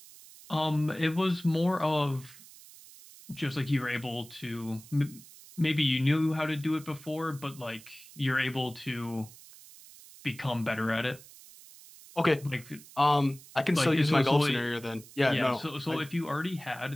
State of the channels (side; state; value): right; noise; hiss, 20 dB below the sound